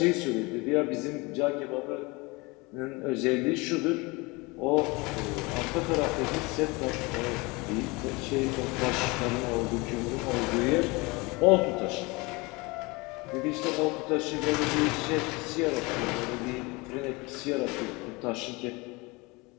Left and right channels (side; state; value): right; quieter; 25.3 dB